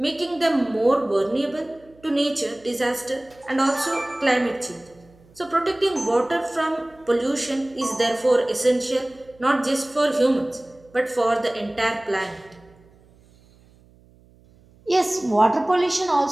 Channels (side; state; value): right; noise; hum, 28 dB below the sound